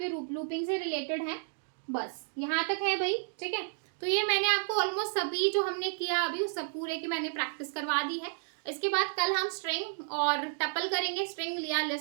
लूपिंग से रिलेटेड हैं, बस यहाँ तक है भाई, ठीक है। तो ये मैंने आपको ऑलमोस्ट सभी जो हमने किया अभी उस सब पूरे की मैंने प्रैक्टिस करवा दी है। इसके बाद कल हम स्ट्रिंग और टपल करेंगे, स्ट्रिंग लिया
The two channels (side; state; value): left; silent; digital silence